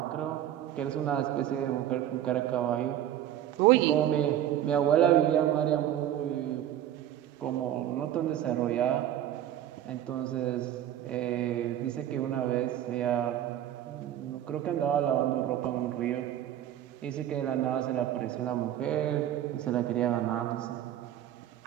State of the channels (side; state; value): left; quieter; 11.6 dB